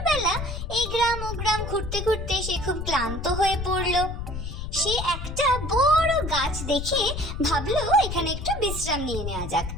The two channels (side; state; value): left; noise; rumble, 6 dB below the sound